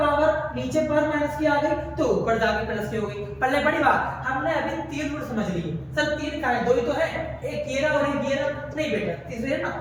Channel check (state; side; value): identical; both; correlation 1.00